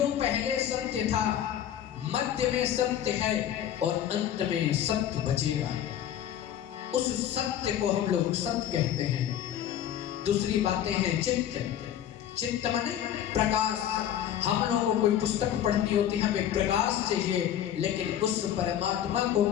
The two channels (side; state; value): right; quieter; 10.6 dB